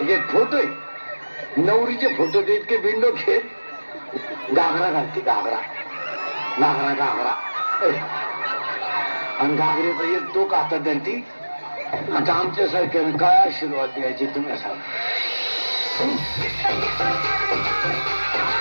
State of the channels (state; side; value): inverted; both; correlation -1.00